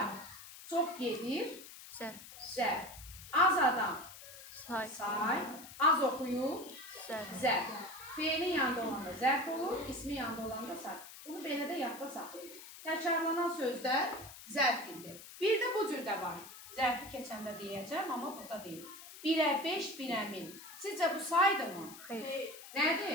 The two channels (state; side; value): noise; left; hiss, 15 dB below the sound